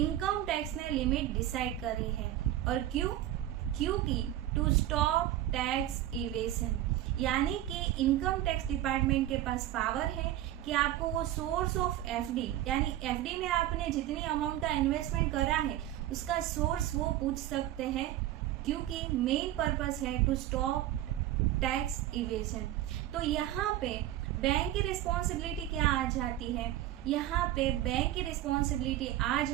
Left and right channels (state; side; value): quieter; left; 13.3 dB